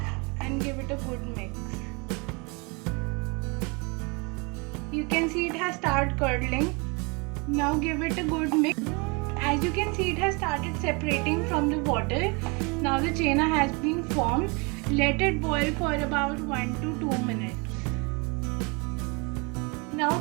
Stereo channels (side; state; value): left; quieter; 30.3 dB